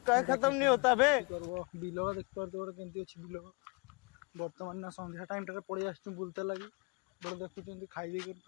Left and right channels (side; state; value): right; quieter; 31.5 dB